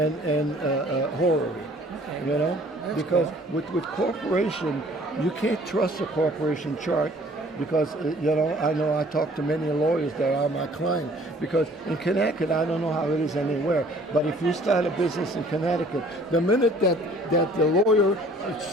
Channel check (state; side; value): normal; both; correlation 0.54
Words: horror, Okay. That's because cool. with corporation, you can't trust a corporation chart because, I know I talk to many lawyers that are my client because in Connecticut, I don't know how it is anywhere, but if you start a business in Connecticut, the minute that the lawyer